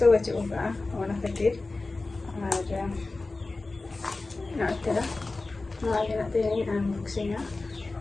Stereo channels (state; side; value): quieter; right; 3.4 dB